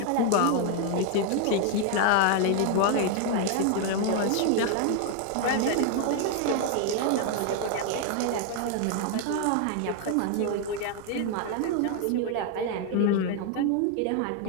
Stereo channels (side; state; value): both; different; correlation 0.00